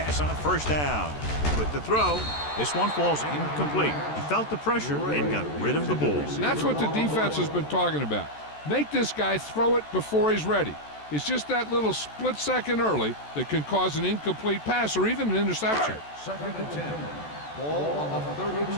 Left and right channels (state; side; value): late; right; 14 ms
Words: on first down. With the throw, this one falls incomplete. He felt the pressure and got rid of the ball. That's what the defense has been talking about. Make this guy throw it before he's ready. It's just that little split second early that can cause an incomplete pass or even an interception. 2nd and 10. Ball on the